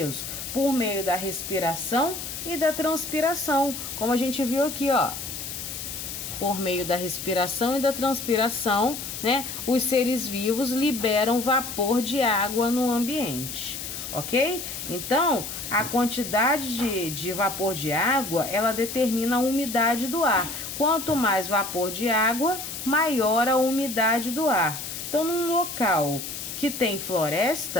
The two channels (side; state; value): left; noise; hiss, 7 dB below the sound